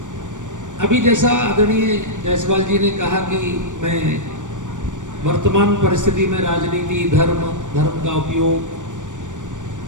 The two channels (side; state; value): left; late; 0.86 ms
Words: अभी जैसा आदरणीय जायसवाल जी ने कहा कि मैं वर्तमान परिस्थिति में राजनीति, धर्म, धर्म का उपयोग,